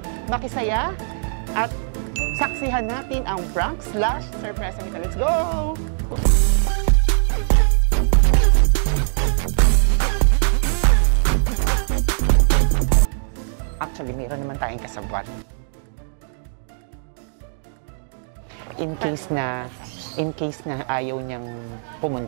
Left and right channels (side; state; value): left; silent; digital silence